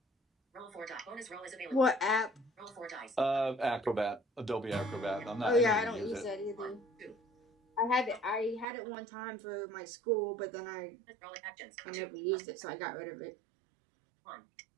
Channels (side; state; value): left; drops out; at 8.7 s